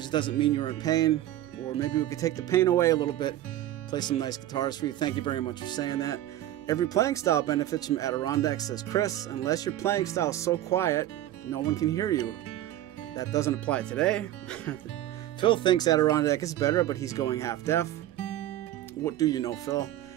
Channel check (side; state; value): left; quieter; 13.4 dB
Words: doesn't mean you're in pain, or maybe we could take the pain away a little bit, play some nice guitars for you. Thank you very much for saying that. Every playing style benefits from Adirondack, says Chris, unless your playing style is so quiet no one can hear you. That doesn't apply today. Phil thinks Adirondack is better, but he's going half deaf. What do you know, Phil?